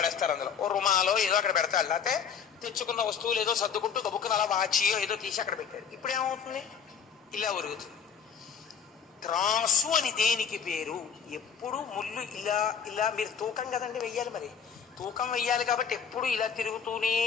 అందులో ఓ రుమాలో ఏదో అక్కడ పెడతారు. లేకపోతే తెచ్చుకున్న వస్తువులు ఏదో సర్దుకుంటూ గబుక్కున అలా వాచియో ఏదో తీసి అక్కడ పెట్టారు. ఇప్పుడు ఏమవుతుంది? ఇలా ఉరుగుతుంది. త్రాసు అని దేనికి పేరు? ఎప్పుడు ముళ్ళు ఇలా ఇలా మీరు తూకం కదండి వెయ్యాలి, మరి తూకం వెయ్యాలి కాబట్టి ఎప్పుడు ఇలా తిరుగుతూనే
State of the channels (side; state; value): right; quieter; 7.0 dB